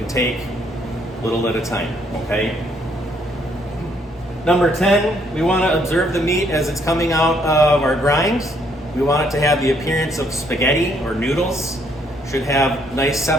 take, little at a time, okay? Number 10, we want to observe the meat as it's coming out of our grinds. We want it to have the appearance of spaghetti or noodles, should have nice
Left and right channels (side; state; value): both; normal; correlation 0.68